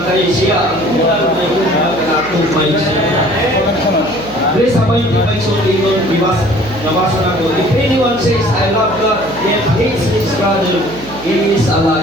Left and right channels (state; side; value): noise; right; hum, 18 dB below the sound